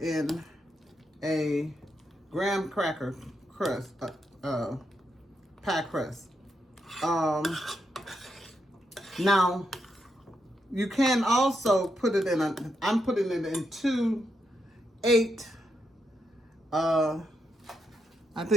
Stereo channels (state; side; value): normal; both; correlation 0.82